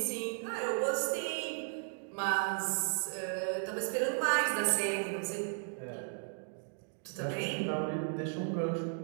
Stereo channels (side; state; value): left; silent; 54 dB below the other